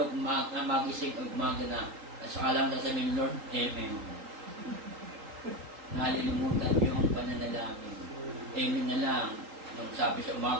magising, umaga na. Saka lang sasabihin, Lord, Amen. Nalilimutan yung pananalangin. Amen na lang. Magsabi sa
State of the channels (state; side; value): late; left; 3.8 ms